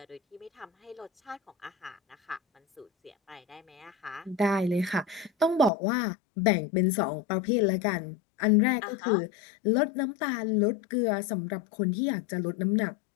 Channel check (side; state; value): right; drops out; at 5.7 s